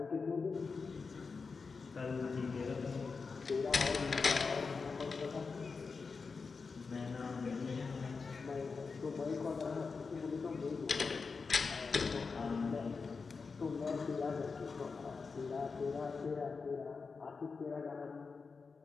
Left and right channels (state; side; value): quieter; right; 4.8 dB